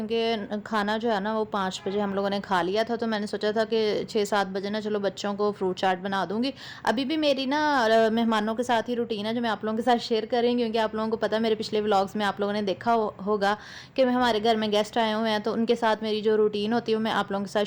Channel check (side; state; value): both; identical; correlation 1.00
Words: खाना जो है ना वो 5 बजे हम लोगों ने खा लिया था। तो मैंने सोचा था कि 6-7 बजे ना चलो बच्चों को फ्रूट चाट बना दूंगी। अभी भी मेरी ना मेहमानों के साथ ही रूटीन है जो मैं आप लोगों के साथ शेयर कर रही हूँ, क्योंकि आप लोगों को पता है मेरे पिछले व्लॉग्स में आप लोगों ने देखा होगा कि हमारे घर में गेस्ट आए हुए हैं, तो उनके साथ मेरी जो रूटीन होती है वो मैं आप लोगों के